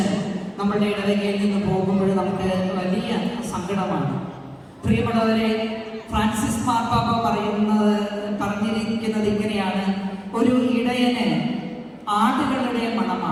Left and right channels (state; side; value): identical; both; correlation 1.00